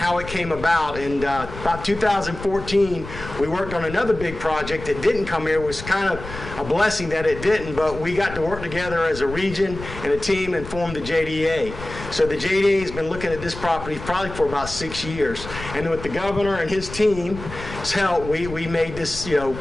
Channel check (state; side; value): noise; left; rumble, 12 dB below the sound